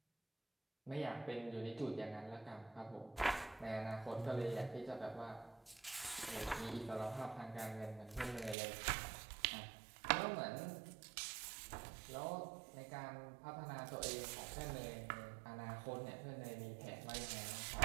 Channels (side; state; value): left; drops out; at 8.6 s